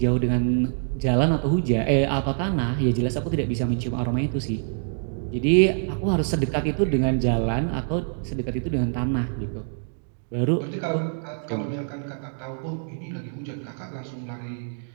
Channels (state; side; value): silent; left; digital silence